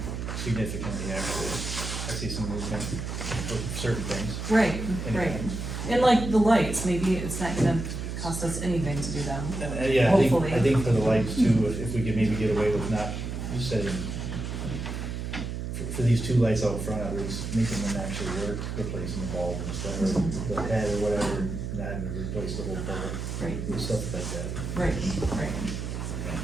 significantly actually. I see some movement for certain things. Right, right, Anyway. and like the lights, maybe it's not gonna cost us anything to do them. And, yeah, Hopefully. I think for the lights too, if we could maybe get away with not setting, for these two lights out front, at least making them actually work, replacing the bulb and stuff, or the head or whatever, not having to replace the whole bulb, Right, stuff like that. right, right.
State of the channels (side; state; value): right; noise; hum, 5 dB below the sound